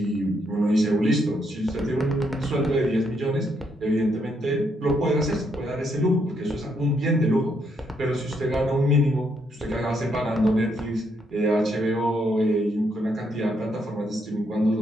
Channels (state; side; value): normal; both; correlation 0.75